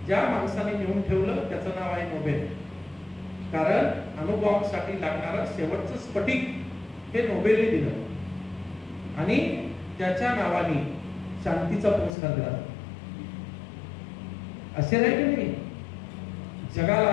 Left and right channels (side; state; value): right; drops out; at 12.1 s